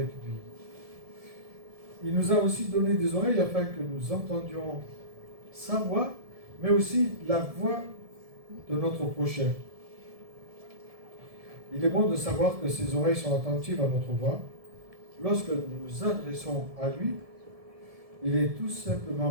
lui. Il nous a aussi donné des oreilles afin que nous entendions sa voix, mais aussi la voix de notre prochain. Il est bon de savoir que ses oreilles sont attentives à notre voix. Lorsque nous nous adressons à lui, il est tout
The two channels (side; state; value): left; late; 1.7 ms